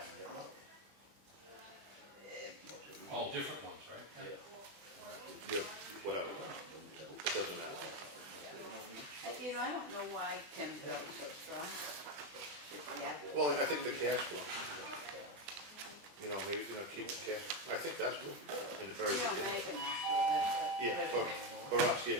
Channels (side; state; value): left; late; 20 ms